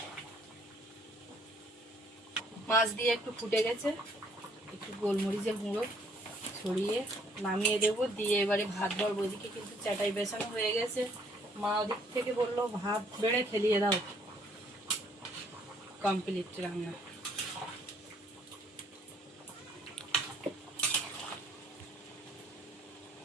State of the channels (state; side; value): normal; both; correlation 0.64